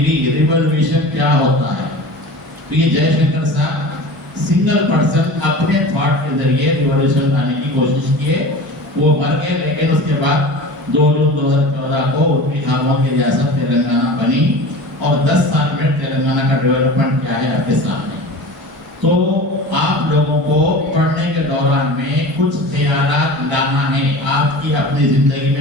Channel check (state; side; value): normal; both; correlation 0.35